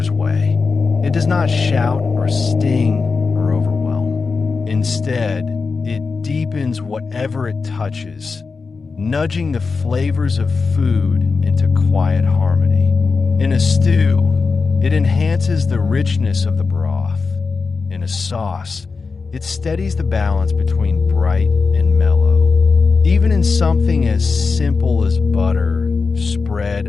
way. It does not shout or sting or overwhelm. Instead, it deepens whatever it touches, nudging the flavors of food into quiet harmony. In a stew, it enhances the richness of the broth. In a sauce, it steadies the balance between bright and mellow. Even in something as simple as butter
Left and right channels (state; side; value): quieter; right; 4.6 dB